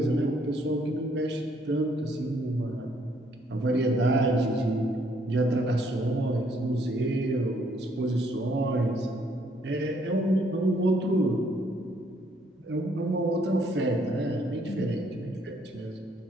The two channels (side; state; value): both; normal; correlation 0.67